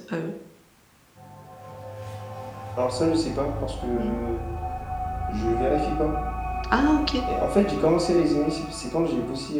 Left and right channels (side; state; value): both; identical; correlation 1.00